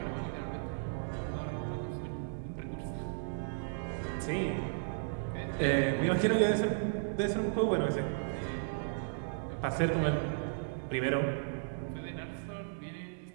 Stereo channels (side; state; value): left; silent; digital silence